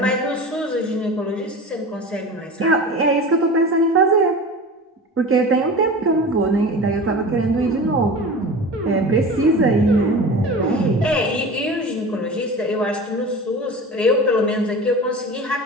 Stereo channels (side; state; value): both; normal; correlation 0.33